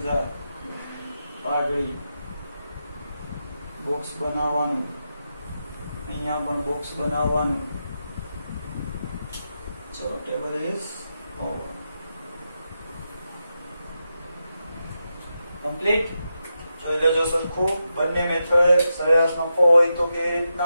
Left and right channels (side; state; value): both; inverted; correlation -0.87